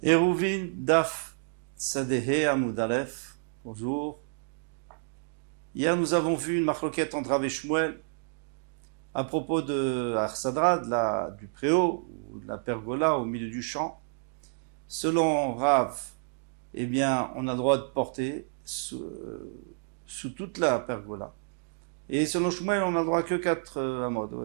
Eruvin Daf Sadehe Amud Aleph. Bonjour. Hier, nous avons vu une marloquette entre Rav et Shmuel à propos de Arsadra, du préau, ou de la pergola au milieu du champ. Selon Rav, eh bien, on a le droit de porter sous toute la pergola. Et selon Shmuel, on n'a le droit que 4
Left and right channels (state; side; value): silent; left; digital silence